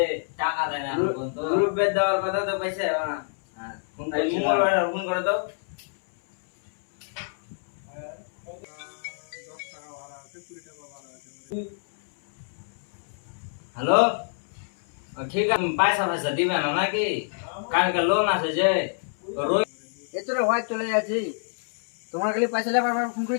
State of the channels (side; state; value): right; silent; 60 dB below the other